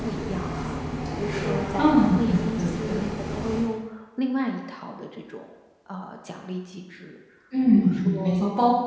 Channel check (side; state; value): both; identical; correlation 1.00